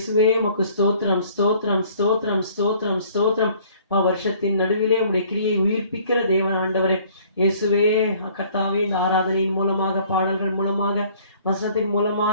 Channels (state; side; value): inverted; both; correlation -0.56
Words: உமக்கு ஸ்தோத்திரம் ஸ்தோத்திரம் ஸ்தோத்திரம் ஸ்தோத்திரம் ஸ்தோத்திரம். வருஷத்தின் நடுவிலே உடைய கிரியை உயிர்ப்பிக்கிற தேவன் ஆண்டவரே இயேசுவே, கர்த்தாவே, இந்த ஆராதனையின் மூலமாக, பாடல்கள் மூலமாக, வசனத்தின்